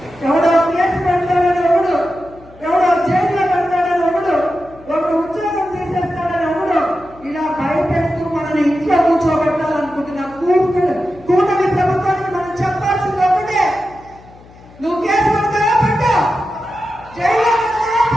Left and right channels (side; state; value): left; noise; hum, 23 dB below the sound